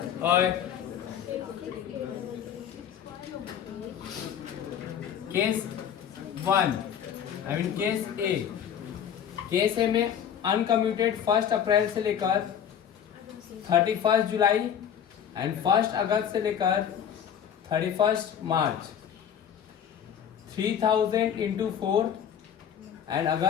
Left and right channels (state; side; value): quieter; right; 8.8 dB